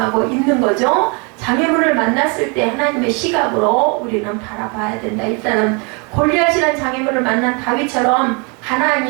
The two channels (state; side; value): quieter; left; 32.8 dB